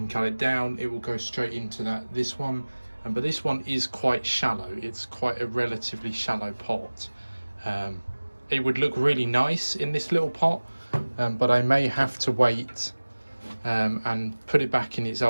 cut it down, it will go straight into this one. But this one is quite shallow. It's quite a relatively shallow pot. It would look really nice in this little pot, but I may have to wait and put it back in its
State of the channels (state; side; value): inverted; both; correlation -1.00